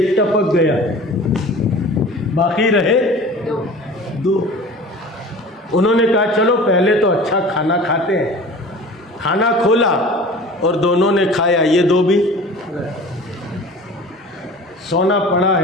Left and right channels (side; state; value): both; normal; correlation 0.41